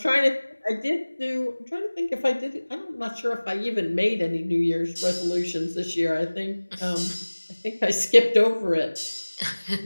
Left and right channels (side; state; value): both; inverted; correlation -1.00